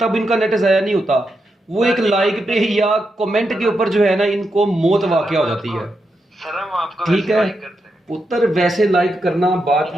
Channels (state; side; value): normal; both; correlation 0.85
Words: इनका नेट ज़ाया नहीं होता, वो एक लाइक पे या कमेंट के ऊपर जो है ना इनको मौत वाक़या हो जाती है। ठीक है पुत्र, वैसे लाइक करना बात